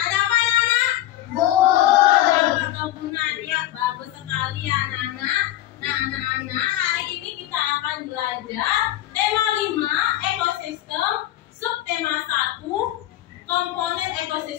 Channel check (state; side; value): quieter; right; 14.2 dB